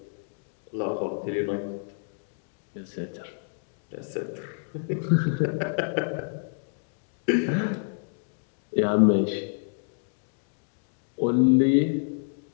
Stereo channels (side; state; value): right; silent; digital silence